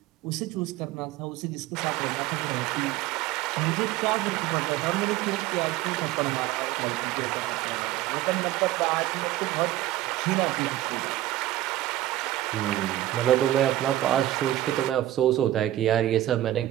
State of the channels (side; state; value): left; quieter; 14.7 dB